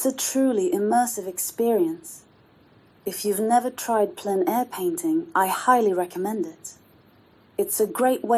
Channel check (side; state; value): both; identical; correlation 1.00